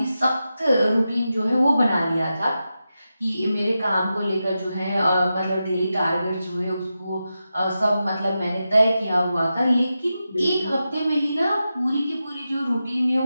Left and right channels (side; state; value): both; inverted; correlation -0.90